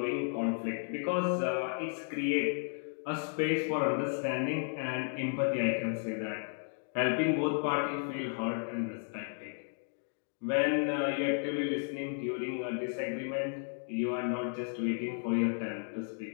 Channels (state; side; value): silent; right; 55 dB below the other